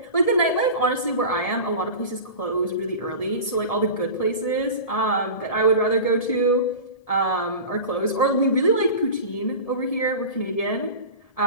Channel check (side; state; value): right; late; 1.7 ms